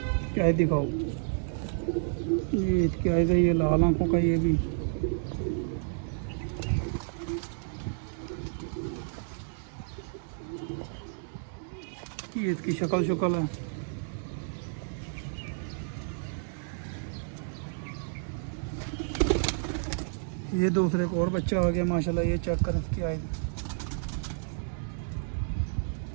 क्या दिखाओ, ये क्या है, ये लाल आंखों का, ये भी ये इसकी शक्ल शुक्ल है। ये दूसरे एक और बच्चा आ गया माशाल्लाह, ये चेक करें इसकी आय,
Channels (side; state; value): left; silent; digital silence